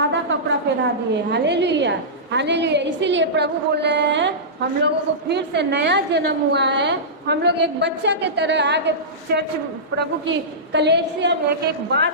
कपड़ा पहना दिए। Hallelujah, hallelujah. इसीलिए प्रभु बोल रहे हैं हम लोगों को फिर से नया जन्म हुआ है। हम लोग एक बच्चा के तरह आगे चर्च प्रभु की कलीसिया में एक एक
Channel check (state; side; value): normal; both; correlation -0.17